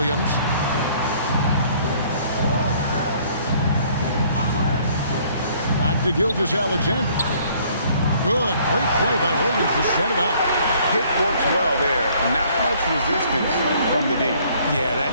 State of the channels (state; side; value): inverted; both; correlation -0.60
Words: Back to Gilgeous-Alexander. Good, great play by Williams to set it up. Hit works well there. Not much resistance from the D. Yeah, that